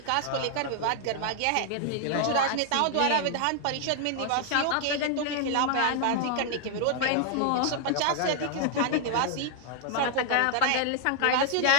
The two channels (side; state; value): both; different; correlation 0.00